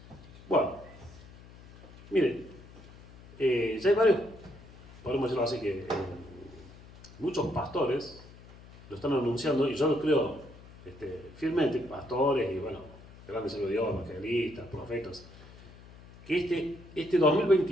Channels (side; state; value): left; noise; hum, 20 dB below the sound